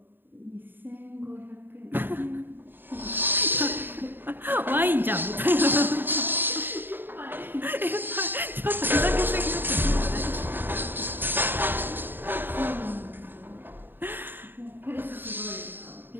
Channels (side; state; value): left; late; 0.096 ms